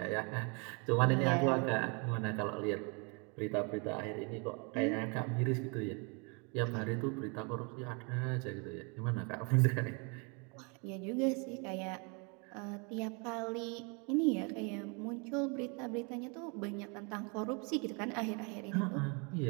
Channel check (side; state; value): left; quieter; 33.3 dB